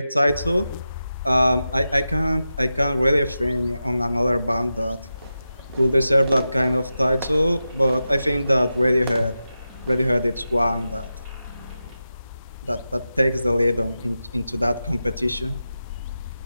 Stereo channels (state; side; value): inverted; both; correlation -0.91